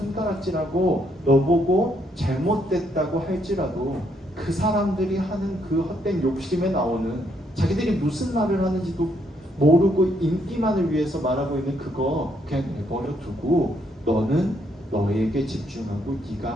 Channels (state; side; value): normal; both; correlation 0.73